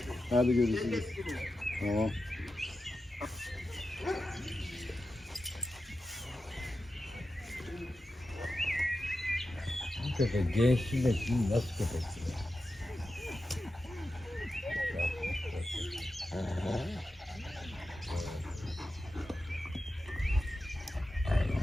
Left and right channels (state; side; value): normal; both; correlation 0.91